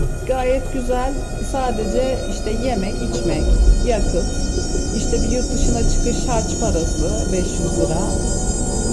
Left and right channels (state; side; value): identical; both; correlation 1.00